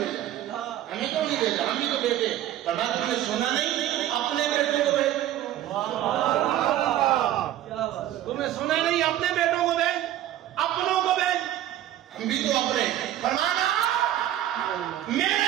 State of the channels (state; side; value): quieter; left; 12.7 dB